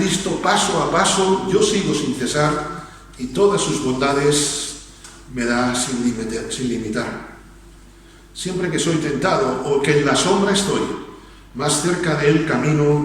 paso a paso yo sigo sin cesar, y todas sus bondades me da sin limitar. Siempre que soy tentado o que en la sombra estoy, más cerca de él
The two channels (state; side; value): identical; both; correlation 1.00